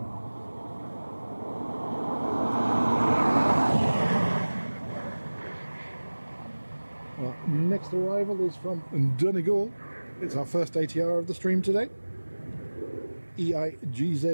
Our next arrival is from Donegal. It's our first ATR of the stream today.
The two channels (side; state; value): both; inverted; correlation -1.00